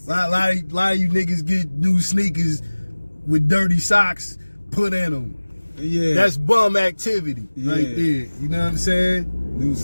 A lot of you niggas get new sneakers with dirty socks put in them. Yeah. That's bum activity right there. You know what I'm saying?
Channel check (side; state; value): both; inverted; correlation -1.00